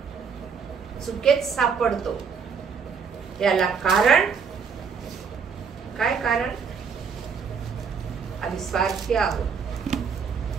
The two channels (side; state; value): left; quieter; 6.1 dB